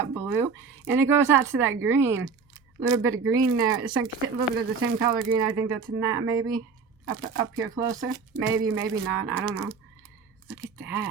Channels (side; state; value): left; quieter; 5.3 dB